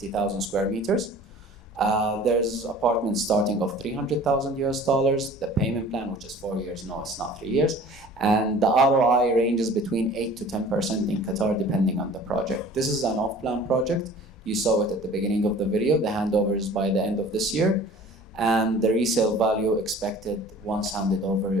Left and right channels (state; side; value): normal; both; correlation 0.46